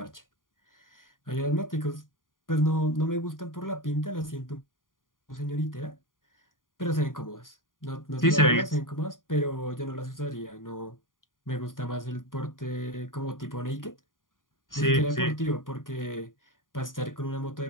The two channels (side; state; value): right; late; 0.90 ms